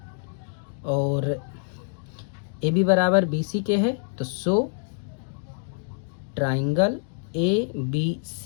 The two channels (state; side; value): silent; right; digital silence